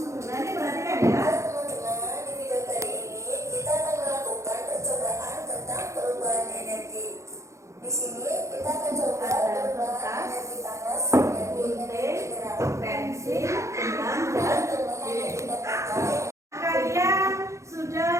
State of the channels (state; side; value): late; left; 0.14 ms